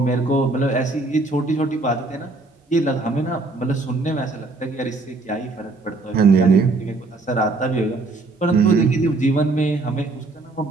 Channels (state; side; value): quieter; left; 3.3 dB